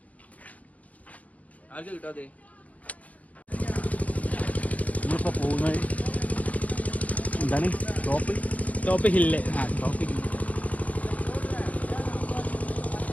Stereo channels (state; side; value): late; right; 0.070 ms